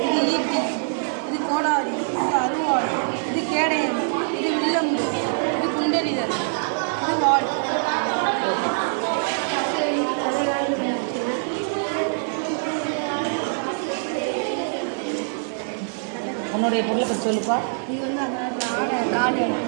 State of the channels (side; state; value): left; silent; 63 dB below the other